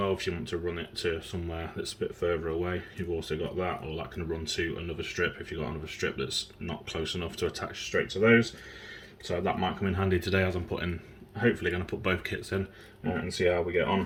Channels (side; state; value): both; identical; correlation 1.00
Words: if you want to run it to somewhere that's a bit further away. You've also got that, or that can run to another strip if you've got another strip that's not close enough to attach straight to those. So that might come in handy today, as I'm hopefully going to put both kits in and see how we get on.